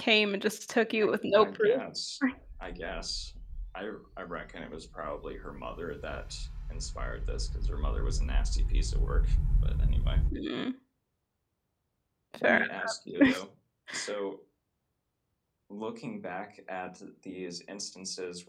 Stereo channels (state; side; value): identical; both; correlation 1.00